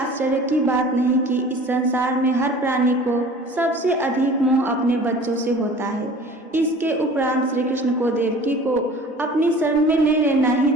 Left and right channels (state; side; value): normal; both; correlation 0.44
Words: की बात नहीं कि इस संसार में हर प्राणी को सबसे अधिक मोह अपने बच्चों से होता है। इसके उपरांत श्री कृष्ण को देवकी को अपनी शरण में ले लेना ही